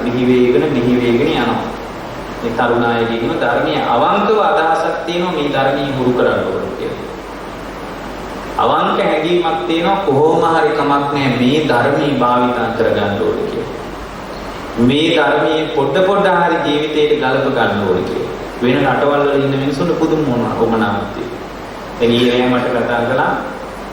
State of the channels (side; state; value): both; identical; correlation 1.00